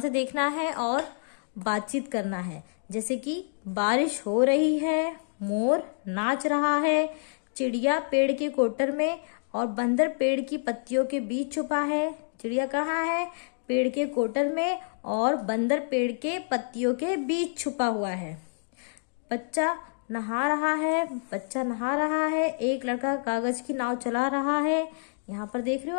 देखना है और बातचीत करना है। जैसे कि बारिश हो रही है, मोर नाच रहा है, चिड़िया पेड़ के कोटर में और बंदर पेड़ की पत्तियों के बीच छुपा है। चिड़िया कहाँ है? पेड़ के कोटर में और बंदर पेड़ के पत्तियों के बीच छुपा हुआ है। बच्चा नहा रहा है। बच्चा नहा रहा है। एक लड़का कागज की नाव चला रहा है। यहाँ पर देख रहे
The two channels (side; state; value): right; silent; digital silence